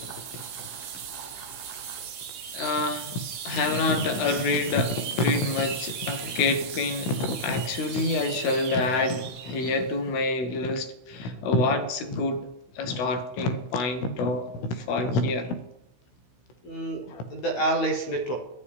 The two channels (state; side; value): late; right; 16 ms